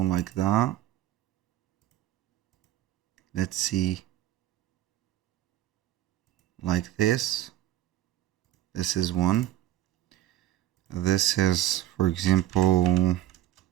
like that. Let's see, like this. This is one. This is, for example,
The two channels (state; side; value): quieter; left; 13.8 dB